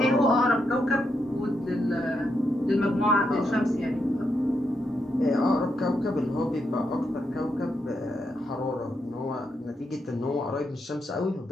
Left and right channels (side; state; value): both; normal; correlation 0.81